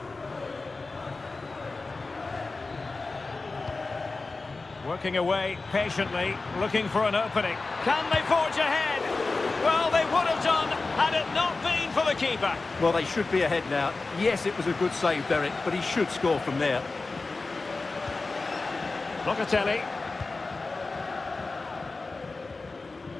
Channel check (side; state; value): right; quieter; 3.7 dB